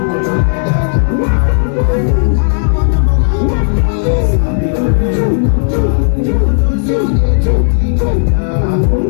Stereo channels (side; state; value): right; silent; digital silence